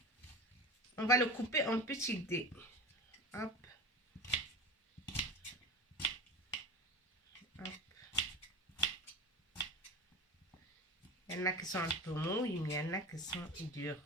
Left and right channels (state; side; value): normal; both; correlation 0.29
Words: on va le couper en petits dés. Hop. Hop. Il y en a qui sont un peu mous, il y en a qui sont durs.